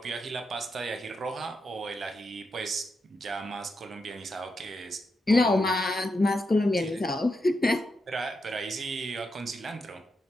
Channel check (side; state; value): both; normal; correlation 0.84